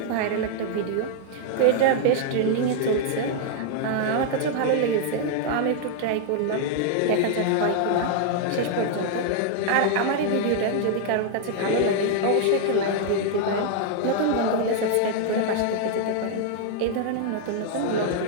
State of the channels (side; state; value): both; different; correlation -0.01